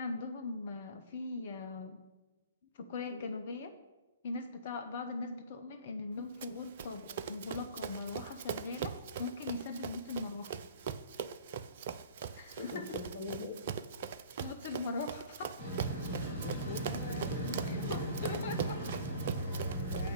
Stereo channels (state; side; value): inverted; both; correlation -0.46